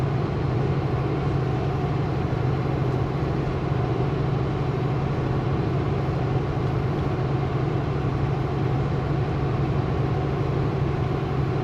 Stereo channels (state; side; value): identical; both; correlation 1.00